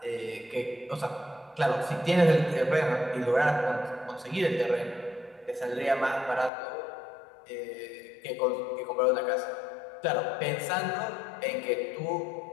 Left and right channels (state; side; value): drops out; right; at 6.5 s